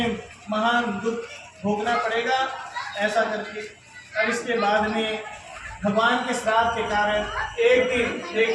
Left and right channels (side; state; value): both; identical; correlation 1.00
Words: महान दुख भोगना पड़ेगा, ऐसा करके। और इसके बाद में भगवान के श्राप के कारण एक दिन